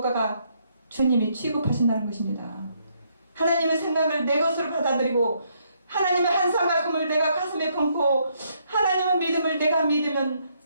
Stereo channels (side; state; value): both; inverted; correlation -0.73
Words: 주님이 취급하신다는 것입니다. 하나님의 생각을 내 것으로 받아들이고 하나님의 한상과 금을 내가 가슴에 품고 하나님의 믿음을 내가 믿으면